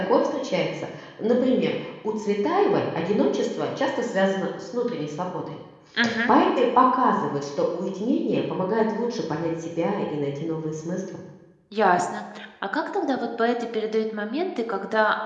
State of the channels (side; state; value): both; identical; correlation 1.00